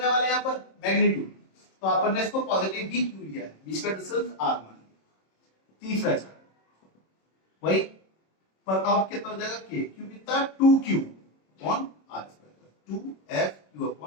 वाले हैं यहाँ पर, मैग्नीट्यूड। तो अपन ने इसको पॉजिटिव भी क्यू लिया है, बीच का डिस्टेंस R मान लिया। तीसरा चार्ज वही, पर अब कितना हो जाएगा, K Q कितना, 2Q upon R², 2FQ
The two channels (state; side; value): late; right; 26 ms